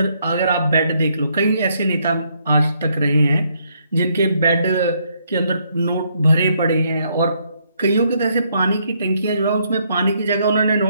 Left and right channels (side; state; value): both; inverted; correlation -0.72